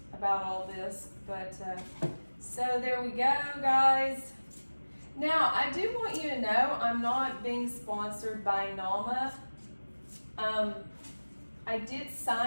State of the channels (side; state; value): both; inverted; correlation -1.00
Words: about all this, but so there we go, guys. Now, I do want you to know I'm not being sponsored by NAMA. I did